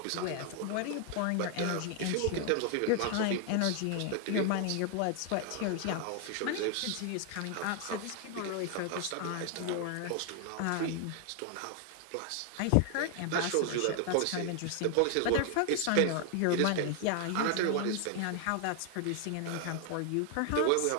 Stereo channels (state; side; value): different; both; correlation 0.00